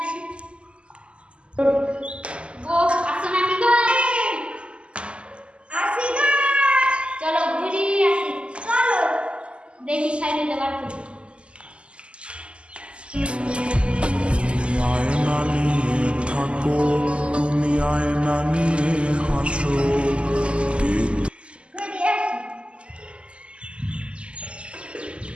আসি গো আসো না কি গো আসি না চলো ঘুরিয়ে আসি চলো দেখি সাইডে দেবার করি আয়না নিয়ে থাকো তুমি আয়না নিয়ে হাসো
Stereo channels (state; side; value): late; left; 0.053 ms